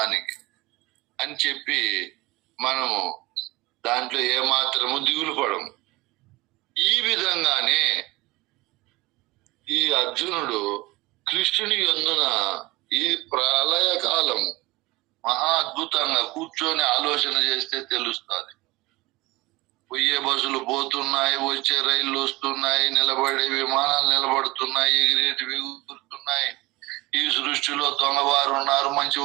అని చెప్పి మనము దాంట్లో ఏమాత్రము దిగులు పడము. ఈ విధంగానే ఈ అర్జునుడు కృష్ణుని యందున ఈ ప్రళయ కాలము మహా అద్భుతంగా కూర్చొని ఆలోచన చేస్తే తెలుస్తుంది. పోయే బస్సులు పోతున్నాయి, వచ్చే రైళ్లు వస్తున్నాయి, నిలబడే విమానాలు నిలబడుతున్నాయి, ఎగిరేటివి ఎగురుతున్నాయి. ఈ సృష్టిలో దొంగవారు ఉన్నారు,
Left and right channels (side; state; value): left; quieter; 21.2 dB